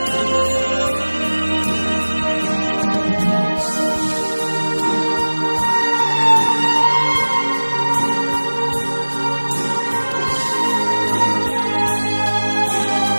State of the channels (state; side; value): inverted; both; correlation -1.00